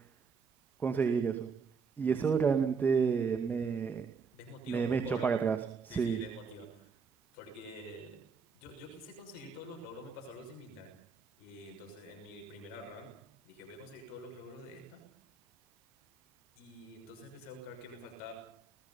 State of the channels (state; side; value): quieter; left; 5.5 dB